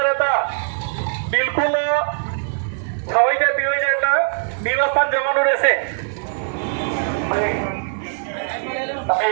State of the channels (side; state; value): left; silent; 57 dB below the other